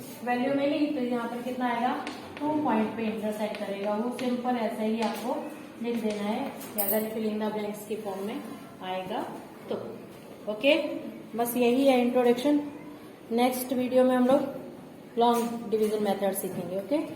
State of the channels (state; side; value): identical; both; correlation 1.00